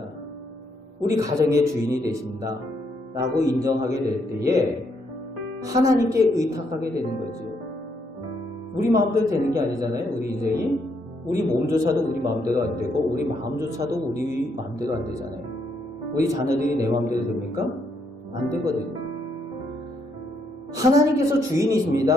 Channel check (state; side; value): normal; both; correlation 0.74